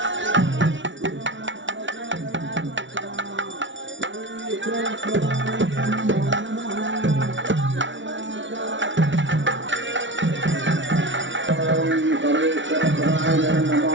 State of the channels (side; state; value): left; late; 0.55 ms